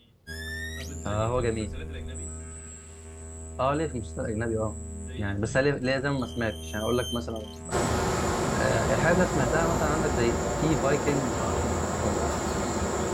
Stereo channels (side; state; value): both; identical; correlation 1.00